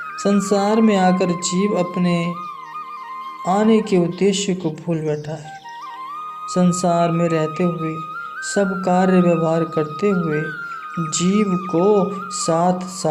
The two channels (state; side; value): identical; both; correlation 1.00